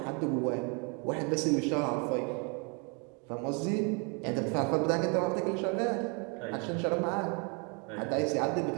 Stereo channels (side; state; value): left; quieter; 33.7 dB